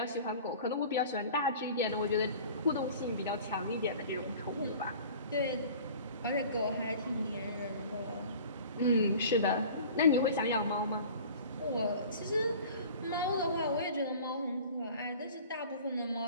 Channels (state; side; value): inverted; both; correlation -0.44